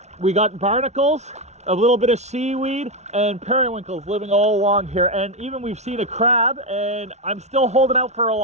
We got barnacles, a little bit of seaweed, and periwinkles living all along here. And even we've seen a crab, and I'm still holding out for a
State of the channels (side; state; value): left; late; 0.32 ms